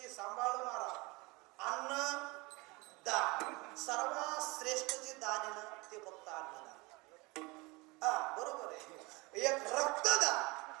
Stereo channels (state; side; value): quieter; left; 24.9 dB